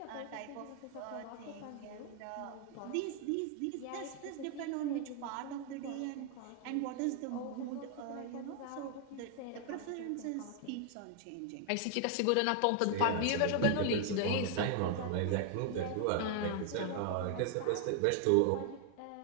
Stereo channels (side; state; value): both; different; correlation 0.00